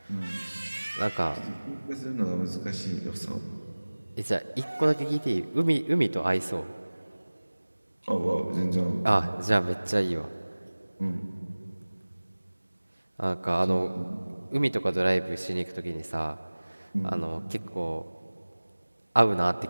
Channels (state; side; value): inverted; both; correlation -1.00